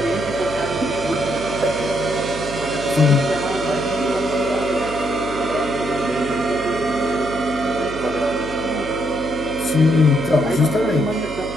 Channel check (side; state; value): right; noise; hum, 13 dB below the sound